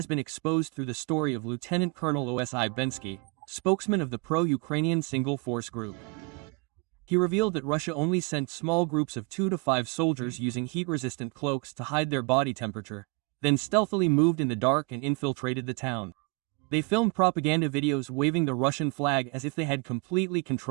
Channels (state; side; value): quieter; left; 30.1 dB